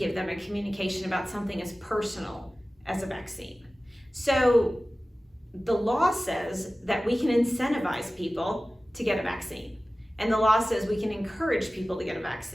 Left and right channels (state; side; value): normal; both; correlation 0.96